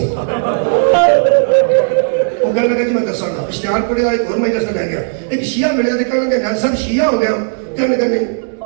وہ کہنے لگا جی میں دساں گا اشتہار پڑھیا ایک اور مجلس میں رہ گیا ایک شیعہ ملیا تے کہنے لگا نیاز صاحب شیعہ ہو گیا کہنے لگا نہیں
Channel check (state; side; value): silent; left; digital silence